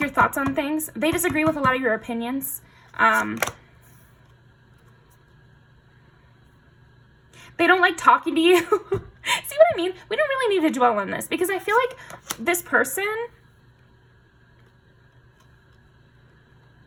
thoughts on things. They disagree with a lot of your opinions. They don't like talking to you. See what I mean? We don't really need to dwell on this because I feel like this person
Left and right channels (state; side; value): identical; both; correlation 1.00